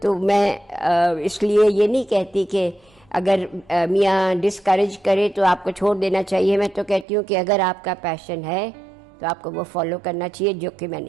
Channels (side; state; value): left; drops out; at 7.1 s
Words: میں اس لیے یہ نہیں کہتی کہ اگر میاں ڈسکریج کرے تو آپ کو چھوڑ دینا چاہیے. میں تو کہتی ہوں کہ اگر آپ کا پیشن ہے تو آپ کو وہ فالو کرنا چاہیے، جو کہ میں